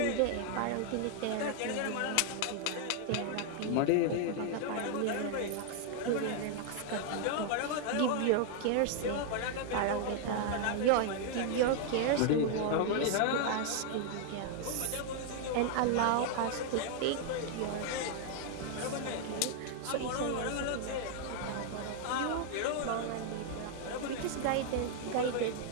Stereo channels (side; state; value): both; different; correlation 0.00